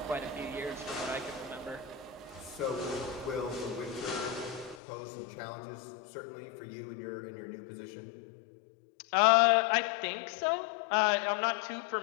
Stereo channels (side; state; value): right; drops out; at 4.8 s